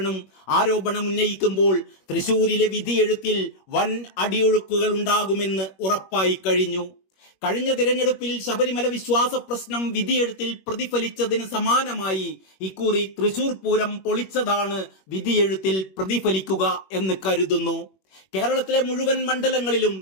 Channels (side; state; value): right; late; 21 ms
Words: ആരോപണം ഉന്നയിക്കുമ്പോൾ തൃശൂരിലെ വിധിയെഴുത്തിൽ വൻ അടിയൊഴുക്കുകൾ ഉണ്ടാകുമെന്ന് ഉറപ്പായി കഴിഞ്ഞു. കഴിഞ്ഞ തിരഞ്ഞെടുപ്പിൽ ശബരിമല വിശ്വാസ പ്രശ്നം വിധിയെഴുത്തിൽ പ്രതിഫലിച്ചതിന് സമാനമായി ഇക്കുറി തൃശൂർ പൂരം പൊളിച്ചതാണ് വിധിയെഴുത്തിൽ പ്രതിഫലിക്കുക എന്ന് കരുതുന്നു. കേരളത്തിലെ മുഴുവൻ മണ്ഡലങ്ങളിലും